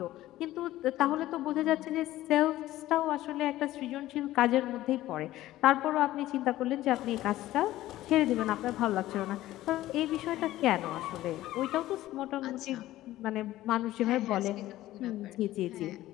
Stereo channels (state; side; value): quieter; right; 15.3 dB